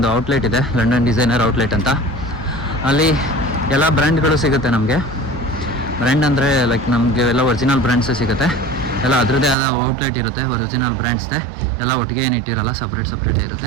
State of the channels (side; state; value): left; drops out; at 9.6 s